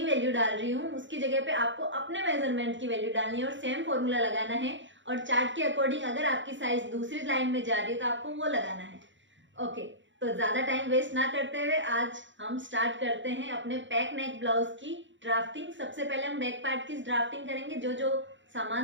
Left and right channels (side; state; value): left; late; 0.54 ms